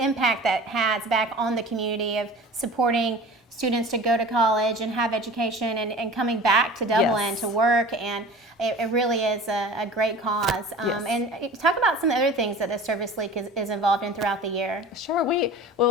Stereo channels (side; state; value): both; normal; correlation 0.39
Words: impact that has back on the community of supporting students to go to college and have education and coming back to Dublin to work, and it really is a great cause. And talk about some other things that the Service League is involved in throughout the year. Sure.